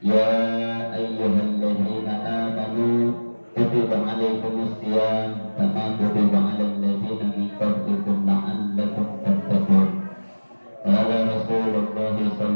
ayyuhalladzina amanu kutiba 'alaikumus shiyam kama kutiba 'alal ladzina min qablikum la'allakum tattaqun. Qala Rasulullah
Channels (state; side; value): inverted; both; correlation -1.00